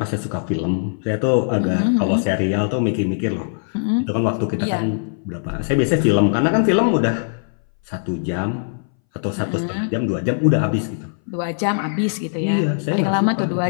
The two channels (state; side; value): silent; right; 62 dB below the other